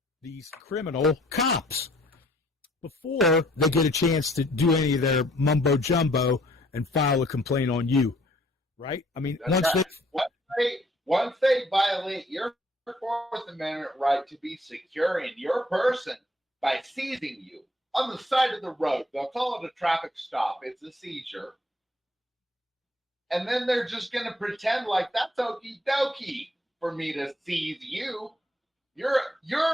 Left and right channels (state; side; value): normal; both; correlation 0.62